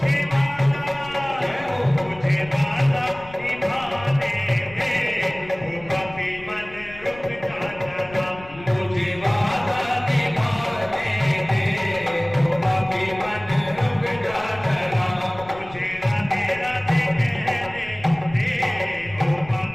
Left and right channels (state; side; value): noise; left; rumble, 19 dB below the sound